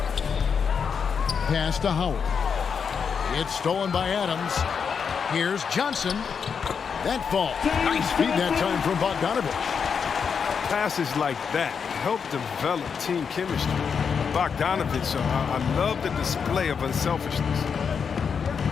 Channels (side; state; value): right; quieter; 6.4 dB